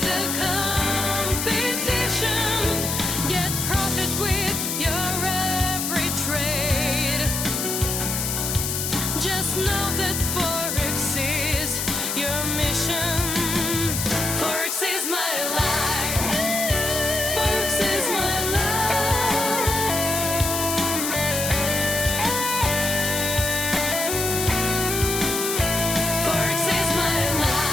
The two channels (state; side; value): noise; left; hiss, 2 dB below the sound